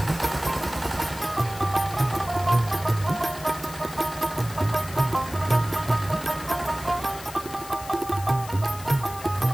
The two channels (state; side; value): noise; left; hiss, 15 dB below the sound